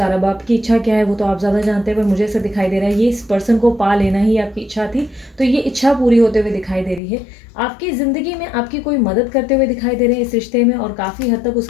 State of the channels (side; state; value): right; drops out; at 7.0 s